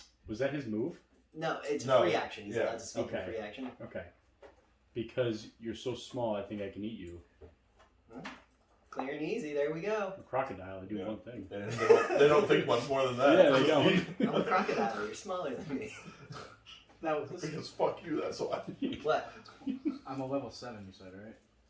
Was that his move? No, it's a No, free action. He's yeah. allowed to speak Okay. in free action. Okay. Because you're so small, I think I can eat you. Clear and easy. There we go. A crocodile, I do Yeah. one thing. And they don't think much more than that. Yeah, they don't. I'm a crocodile. You're smaller than me. That was Because fuck you, that's why. What? I'm a level 7. You said right?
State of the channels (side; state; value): both; identical; correlation 1.00